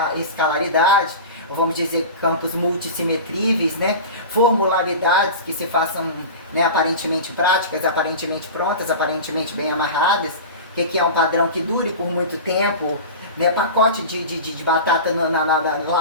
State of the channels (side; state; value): both; inverted; correlation -0.30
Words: a escalaridade, ou vamos dizer campos multissimetríveis, né? Formularidades que se façam, né, aparentemente práticas, aparentemente prontas, aparentemente bem amarradas, que é um padrão que dure por muito tempo, né? Pacote de batata